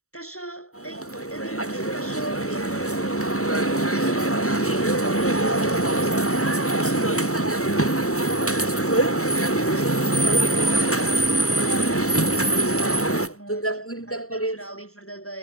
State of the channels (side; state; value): right; late; 0.64 ms